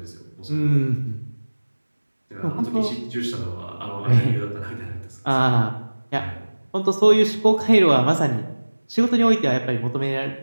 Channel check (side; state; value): both; inverted; correlation -1.00